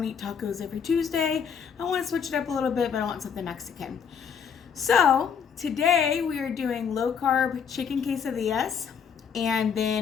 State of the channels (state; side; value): quieter; right; 7.0 dB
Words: to eat tacos every Tuesday. I want to switch it up a little bit, but I want something Mexican. So today we are doing low carb chicken quesadillas, and